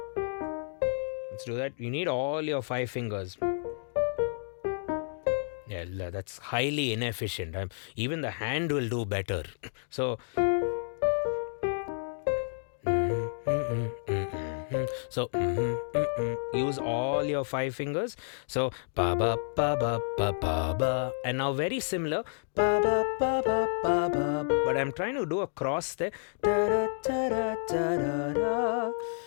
Let's do that. You need all your 5 fingers. Yeah, that's highly inefficient. Even the hand will do better. So use all your 5 fingers. So ba ba ba ba ba ba ba, and now very similar, ba ba ba ba ba ba. But I'm trying to do a cross there. Da da da da da da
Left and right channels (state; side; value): silent; right; digital silence